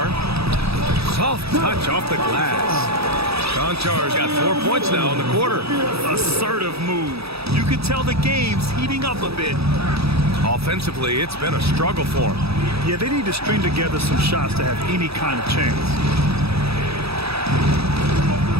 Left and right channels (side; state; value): left; late; 0.77 ms